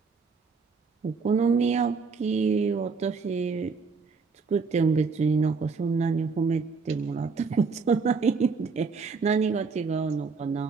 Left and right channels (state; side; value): quieter; left; 4.8 dB